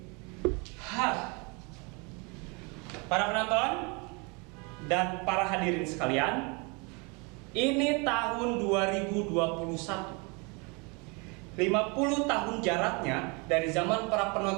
para penonton dan para hadirin sekalian, ini tahun 2021. 50 tahun jaraknya dari zaman para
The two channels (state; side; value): quieter; left; 30.6 dB